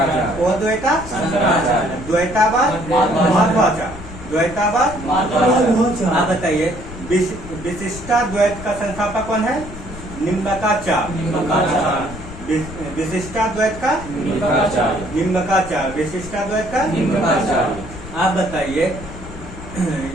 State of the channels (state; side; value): noise; left; rumble, 13 dB below the sound